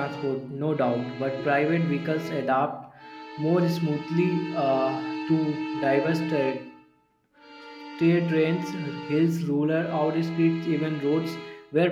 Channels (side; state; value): both; identical; correlation 1.00